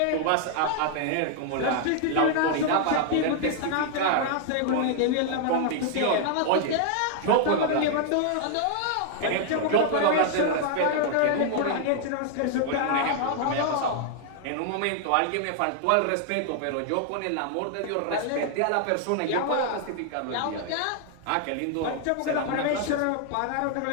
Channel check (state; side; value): different; both; correlation 0.00